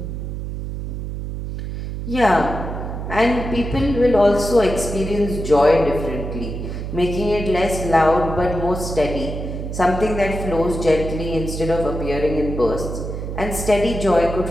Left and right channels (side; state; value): right; noise; hum, 6 dB below the sound